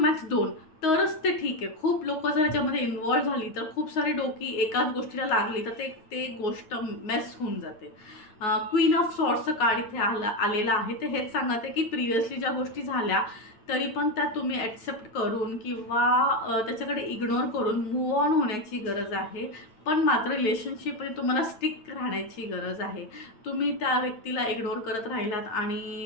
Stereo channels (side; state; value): right; late; 8.9 ms